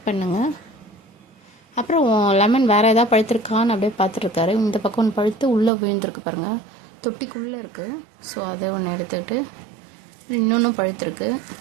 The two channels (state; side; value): drops out; left; at 5.7 s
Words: பண்ணுங்கள். அப்புறம் லெமன் வேறு எதாவது பழுத்திருக்கான்னு அப்படியே பார்த்துட்ருக்காரு. இந்த பக்கம் ஒன்று பழுத்து உள்ளே விழுந்திருக்கு பாருங்கள், தொட்டிக்குள்ளே இருக்குது. ஸோ அதை ஒன்று எடுத்துக்கிட்டு இன்னொன்றும் பழுத்திருக்கு.